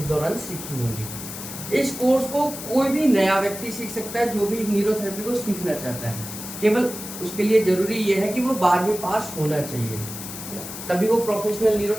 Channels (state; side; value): noise; left; hiss, 10 dB below the sound